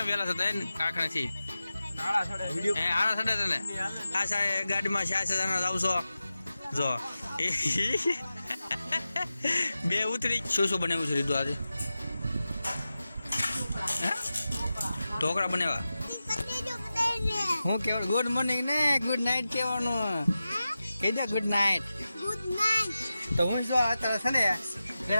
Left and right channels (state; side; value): inverted; both; correlation -0.93